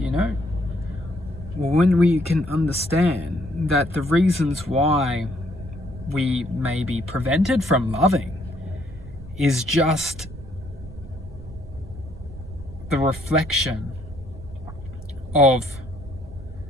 know? Well, when we can understand that the reasons why we may be prevented from loving is just the reflection of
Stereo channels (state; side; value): noise; right; rumble, 15 dB below the sound